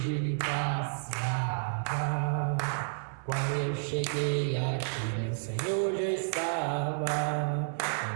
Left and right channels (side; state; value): left; silent; 57 dB below the other